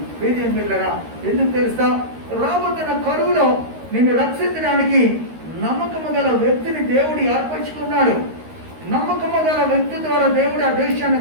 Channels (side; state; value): left; late; 13 ms